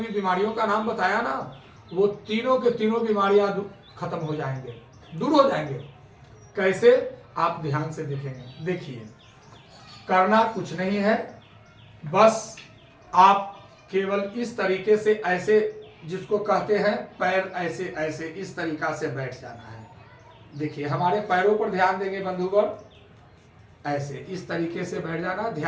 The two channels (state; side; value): identical; both; correlation 1.00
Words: बीमारियों का नाम बताया ना, वो तीनों के तीनों बीमारियां खत्म हो जाएंगे, दूर हो जाएंगे। कैसे? आप ध्यान से देखेंगे। देखिए, करना कुछ नहीं है, बस आप केवल इस तरीके से, ऐसे जिसको कहते हैं पैर ऐसे ऐसे इस तरीका से बैठ जाना है। देखिए, हमारे पैरों पर ध्यान देंगे बंधुवर, ऐसे इस तरीके से बैठ जाना।